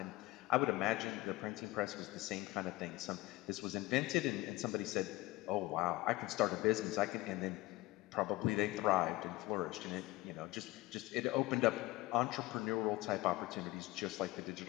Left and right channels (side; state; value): right; quieter; 19.3 dB